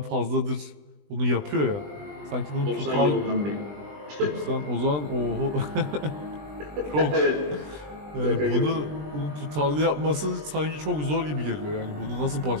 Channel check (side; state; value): left; late; 20 ms